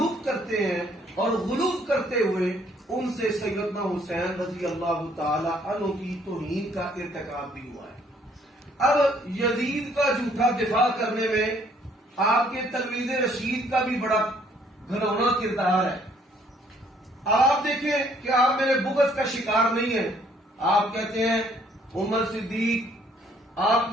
کرتے ہیں، اور غلوف کرتے ہوئے ان سے سیدنا حسین رضی اللہ تعالی عنہ کی توہین کا ارتکاب بھی ہوا ہے. اب یزید کا جھوٹا دفاع کرنے میں آپ کے تلمیذ رشید کا بھی بڑا گھنونا کردار ہے. آپ دیکھیں کہ آپ میرے بغض کا شکار نہیں ہیں. آپ کہتے ہیں عمر صدیق آپ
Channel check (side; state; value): both; normal; correlation 0.64